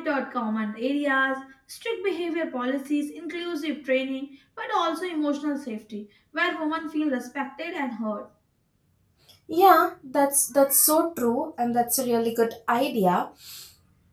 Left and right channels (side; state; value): both; identical; correlation 1.00